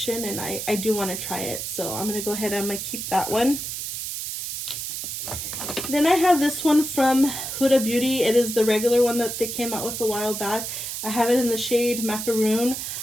and I do want to try it. So I'm going to go ahead and I'm going to keep that one. Then I have this one from Huda Beauty. It is the regular one that they came out with a while back. I have it in the shade Macaroon.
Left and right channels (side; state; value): right; noise; hiss, 5 dB below the sound